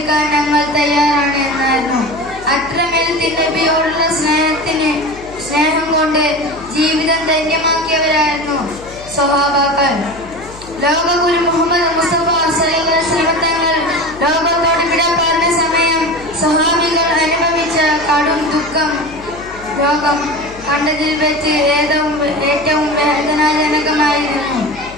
ഞങ്ങൾ തയ്യാറാണ് എന്നായിരുന്നു. അത്രമേൽ നബിയോടുള്ള സ്നേഹം കൊണ്ട് ജീവിതം ധന്യമാക്കിയവരായിരുന്നു സ്വഹാബാക്കൾ. ലോകഗുരു മുഹമ്മദ് മുസ്തഫ സ്വല്ലല്ലാഹു അലൈഹി വസല്ലം തങ്ങൾ ലോകത്തോട് വിട പറഞ്ഞ സമയം സ്വഹാബികൾ അനുഭവിച്ച കടും ദുഃഖം ലോകം കണ്ടതിൽ വെച്ച് ഏറ്റവും വേദനാജനകമായിരുന്നു.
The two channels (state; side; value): noise; left; hum, 18 dB below the sound